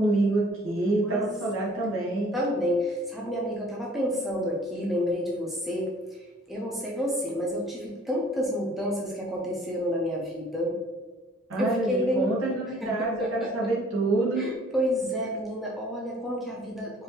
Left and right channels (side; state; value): both; normal; correlation 0.54